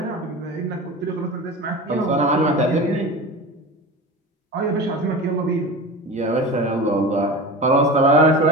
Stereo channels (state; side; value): normal; both; correlation 0.31